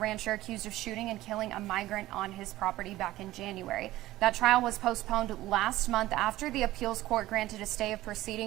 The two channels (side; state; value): left; quieter; 16.2 dB